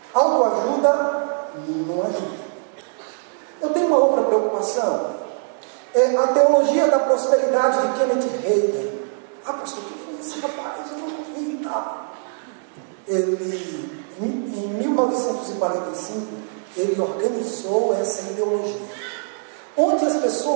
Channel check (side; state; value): left; silent; 64 dB below the other